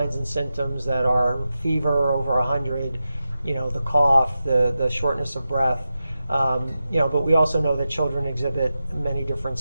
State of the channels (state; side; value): inverted; both; correlation -0.91